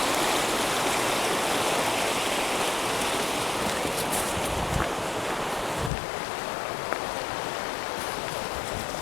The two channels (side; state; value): right; drops out; at 5.9 s